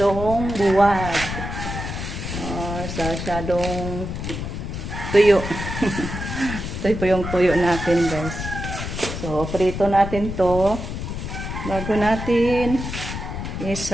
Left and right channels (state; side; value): noise; left; rumble, 6 dB below the sound